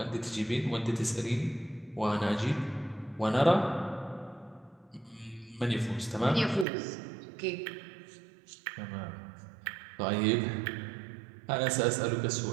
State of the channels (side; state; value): left; drops out; at 6.7 s